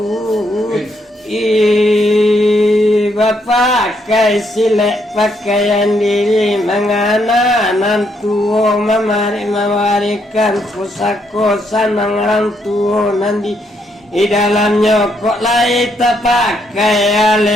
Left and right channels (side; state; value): both; normal; correlation 0.75